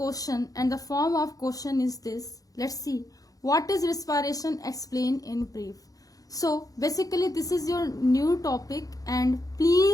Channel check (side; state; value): right; late; 0.17 ms